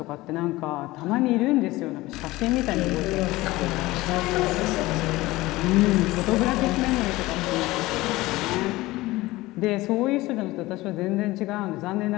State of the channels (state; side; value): quieter; right; 19.1 dB